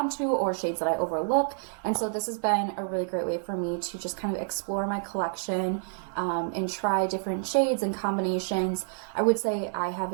to or shades that I overlook. And so this has been a really great way for me to just kind of explore my collection and try different shades and combinations. I would say I have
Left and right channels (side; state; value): left; silent; 56 dB below the other